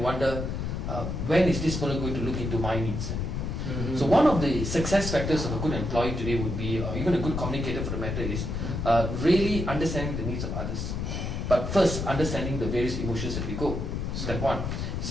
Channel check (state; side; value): noise; left; rumble, 3 dB below the sound